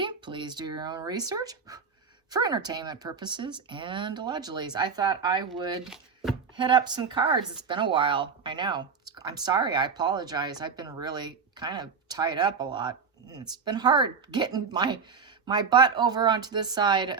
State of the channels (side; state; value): left; quieter; 5.6 dB